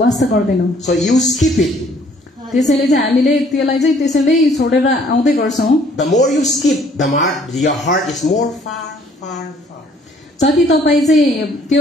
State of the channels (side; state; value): both; normal; correlation 0.60